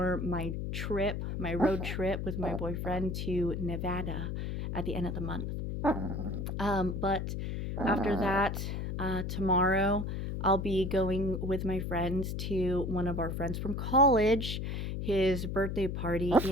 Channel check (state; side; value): noise; left; hum, 3 dB below the sound